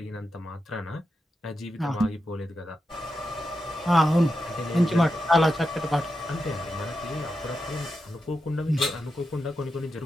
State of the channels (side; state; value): both; normal; correlation 0.88